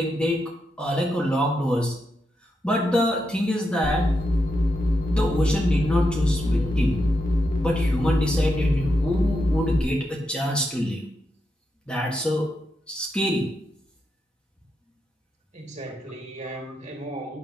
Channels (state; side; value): normal; both; correlation 0.84